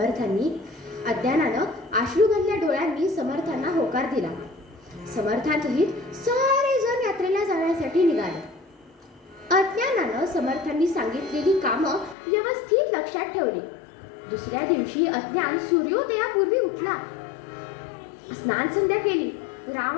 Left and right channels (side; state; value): right; drops out; at 12.2 s